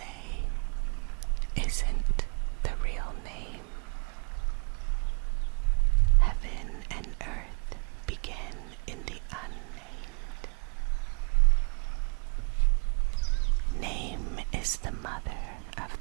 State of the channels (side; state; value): left; quieter; 36.3 dB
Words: isn't the real name. Heaven and earth begin in the unnamed. Name is the mother of